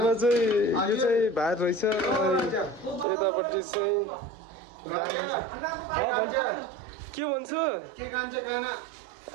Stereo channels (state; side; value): drops out; left; at 3.1 s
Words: चाहिँ यो चाहिँ भात रहेछ, यतापट्टि चाहिँ दाल रहेछ। के भन्छु